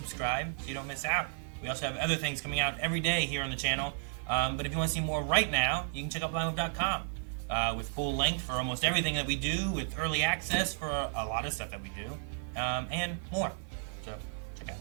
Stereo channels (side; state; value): left; silent; 56 dB below the other